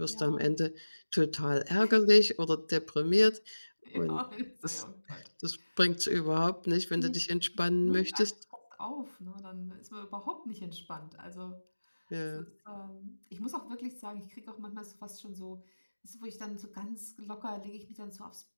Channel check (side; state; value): both; inverted; correlation -1.00